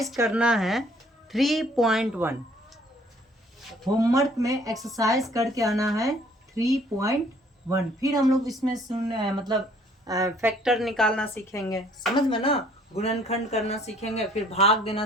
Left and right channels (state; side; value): normal; both; correlation 0.59